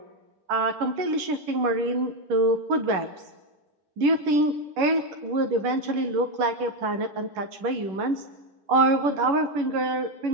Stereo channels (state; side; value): late; left; 11 ms